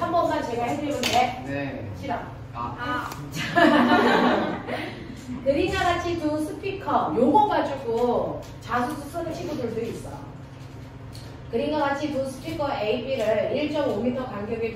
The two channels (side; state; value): both; identical; correlation 1.00